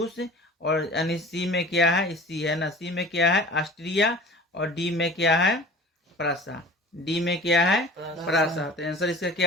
और यानी सी में क्या है? सी है ना। सी में क्या है? ऑस्ट्रिया। और डी में क्या है? प्रासा। डी में क्या है? प्रासा। तो आंसर इसका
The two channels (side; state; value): both; normal; correlation 0.41